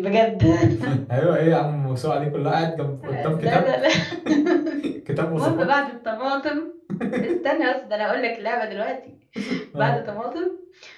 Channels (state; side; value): identical; both; correlation 1.00